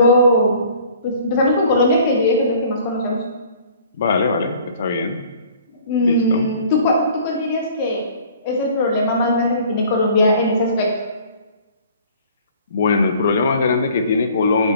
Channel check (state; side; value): inverted; both; correlation -0.52